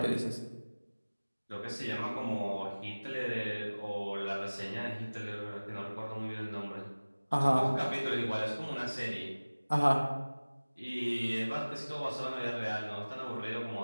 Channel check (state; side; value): inverted; both; correlation -1.00